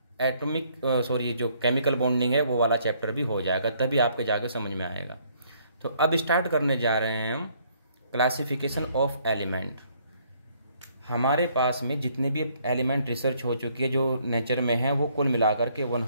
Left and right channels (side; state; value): both; inverted; correlation -0.66